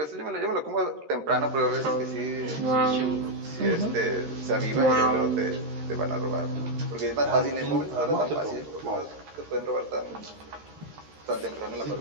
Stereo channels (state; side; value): late; left; 13 ms